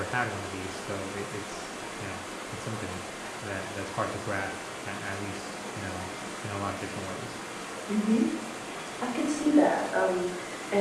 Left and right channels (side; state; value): both; identical; correlation 1.00